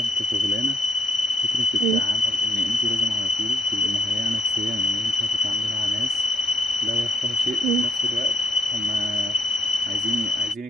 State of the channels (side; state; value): both; normal; correlation 0.72